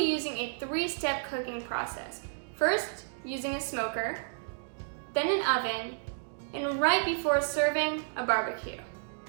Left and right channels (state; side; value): silent; left; digital silence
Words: a 3-step cooking process. First, using a smoker, then an oven, and right before serving, a barbecue.